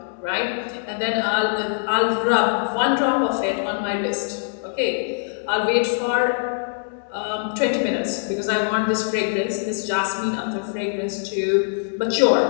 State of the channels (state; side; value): silent; right; digital silence